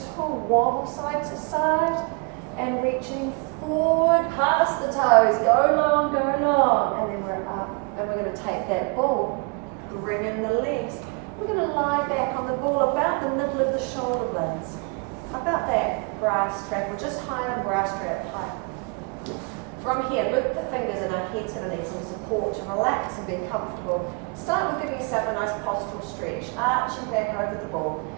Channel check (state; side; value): quieter; left; 33.5 dB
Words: tall, wobble side to side, and reaching forward, past the toes, go long, and then we're up, and we're going to take that ball, bring in the legs. We're going to lie back on the ball about the middle of the shoulder blades, about that bra strap, or just higher than bra strap height. From here, loop the fingers in our heads, and need some support to relax and be comfortable. Start with giving yourself a nice postural stretch, arching back over the ball.